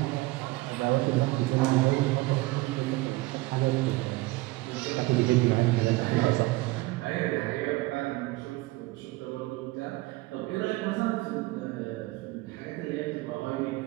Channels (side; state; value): left; quieter; 20.7 dB